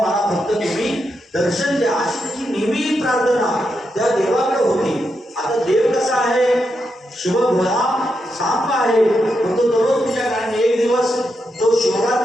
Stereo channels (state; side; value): normal; both; correlation 0.84